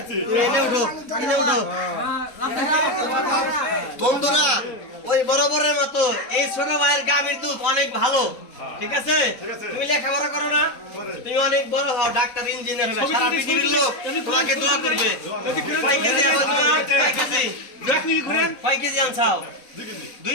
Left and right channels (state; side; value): late; right; 3.9 ms